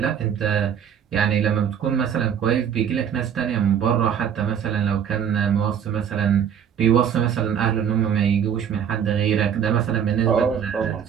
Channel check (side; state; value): left; quieter; 8.4 dB